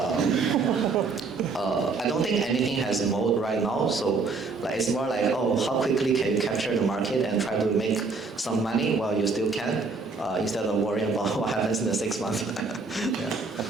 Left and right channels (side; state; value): left; quieter; 4.2 dB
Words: I don't think anything has mode right now, so like it's more like, oh, how quickly can you capture the market and try to make some money while you still can, instead of worrying about what happens in the 6 months. Yeah.